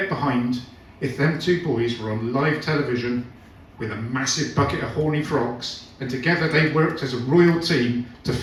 behind if them two boys were on live television with a massive bucket of horny frogs, and together they worked as a royal team to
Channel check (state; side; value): identical; both; correlation 1.00